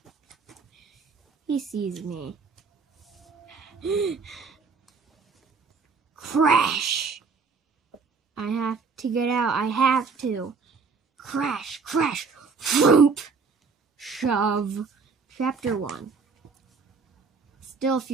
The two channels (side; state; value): left; quieter; 5.0 dB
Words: He sees me. Crash! I have to get out, I have to. Crash, crash, whoop! Shove. Chapter 1. Still a